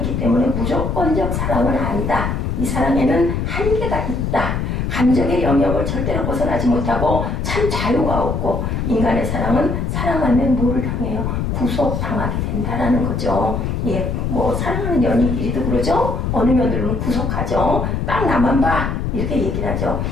때문에 무조건적 사랑은 아니다. 이 사랑에는 한계가 있다. 감정의 영역을 절대로 벗어나지 못하고 참 자유가 없고, 인간의 사랑은 사랑하면 뭐를 당해요? 구속당하게 된다라는 거죠. 예, 뭐 사랑하는 연인끼리도 그러죠. 어느 며느리는 구속하죠. 딱 나만 봐, 이렇게 얘기를 하죠.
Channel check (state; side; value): noise; left; rumble, 1 dB below the sound